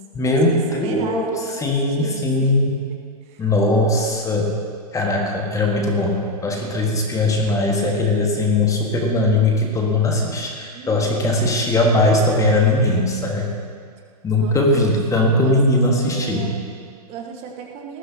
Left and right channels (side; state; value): both; normal; correlation 0.04